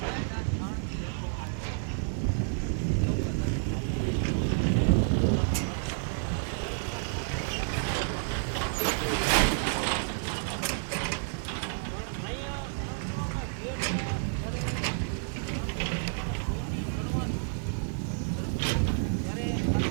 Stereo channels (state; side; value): silent; left; digital silence